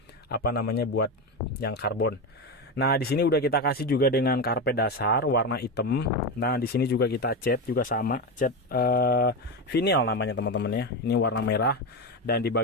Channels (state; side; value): normal; both; correlation 0.16